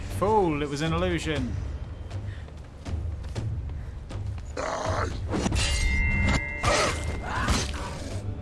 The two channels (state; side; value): identical; both; correlation 1.00